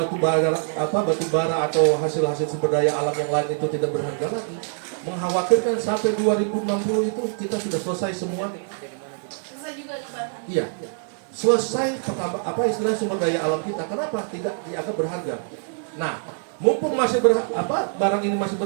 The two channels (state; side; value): silent; left; 62 dB below the other